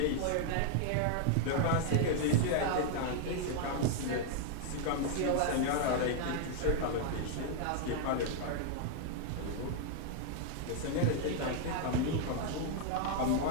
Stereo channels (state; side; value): different; both; correlation 0.00